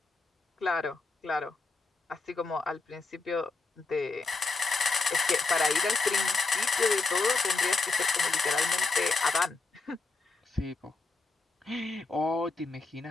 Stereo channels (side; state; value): right; quieter; 3.7 dB